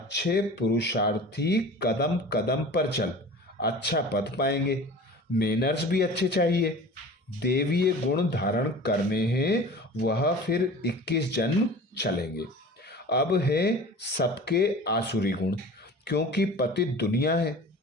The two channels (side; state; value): both; normal; correlation 0.39